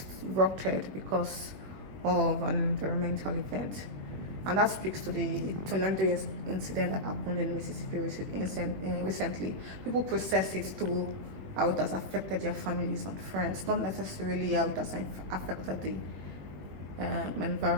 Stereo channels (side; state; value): left; late; 21 ms